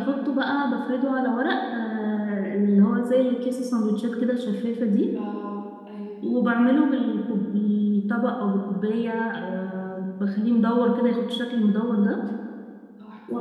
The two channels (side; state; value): both; identical; correlation 1.00